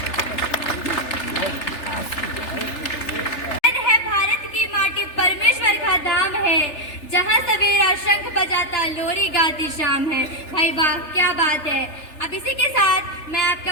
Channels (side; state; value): right; late; 3.4 ms